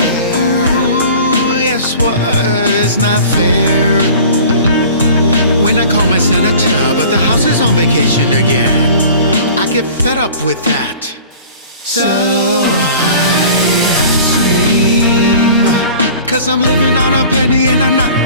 Guess what? It's not fair when I call my senator, but the house is on vacation again. I get fed up with that, so I scream, 'cause I'm living on a penny and I'm not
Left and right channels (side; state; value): both; inverted; correlation -0.44